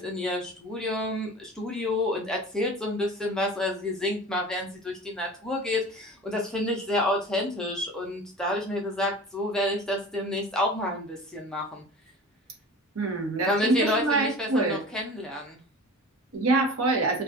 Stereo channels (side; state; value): both; normal; correlation 0.38